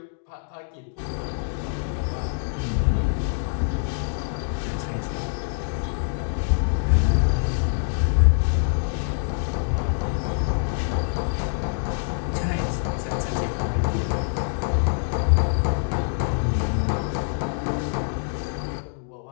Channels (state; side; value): silent; right; digital silence